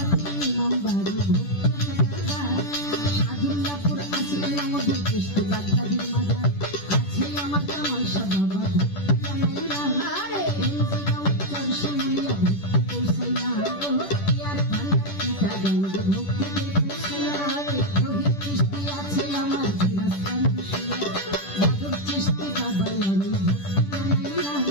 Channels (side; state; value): right; late; 10 ms